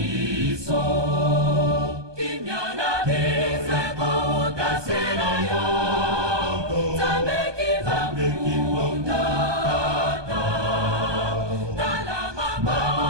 kimia na biso kouta se na yo nzambe kimbangu tata tala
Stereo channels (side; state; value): left; late; 1.2 ms